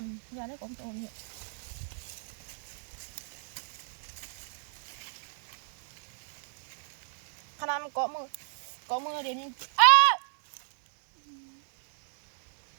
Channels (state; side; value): silent; left; digital silence